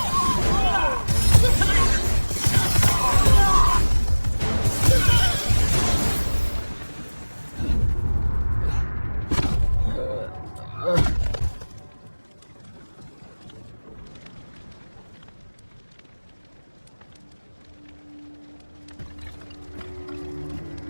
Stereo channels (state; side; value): inverted; both; correlation -1.00